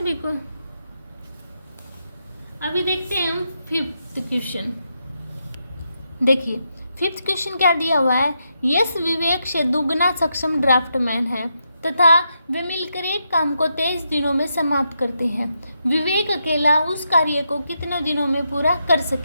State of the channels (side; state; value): both; inverted; correlation -0.83